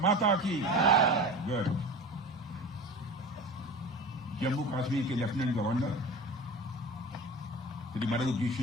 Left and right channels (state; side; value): normal; both; correlation 0.34